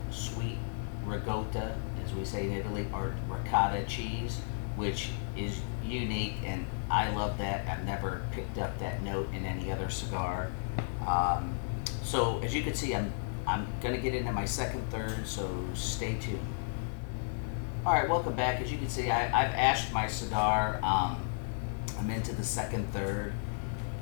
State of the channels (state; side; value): silent; right; 56 dB below the other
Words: sweet ricotta, as we say in Italy, or ricotta cheese, which is unique, and I love that. I've never picked up that note in any other cigar. So as you can see, I'm going to get into my second third, so stay tuned. Alright, welcome back. As you can see, I've ashed my cigar. I'm into the second third.